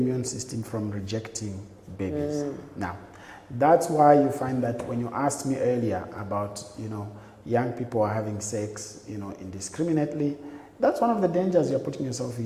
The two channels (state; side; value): identical; both; correlation 1.00